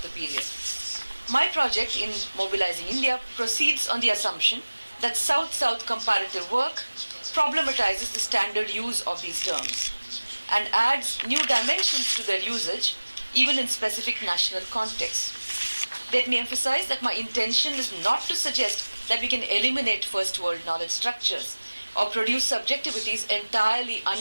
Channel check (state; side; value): inverted; both; correlation -1.00